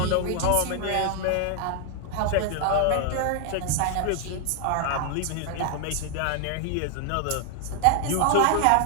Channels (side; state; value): both; different; correlation 0.00